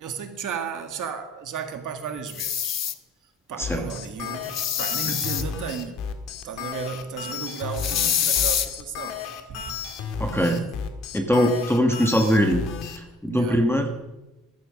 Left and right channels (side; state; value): both; normal; correlation 0.58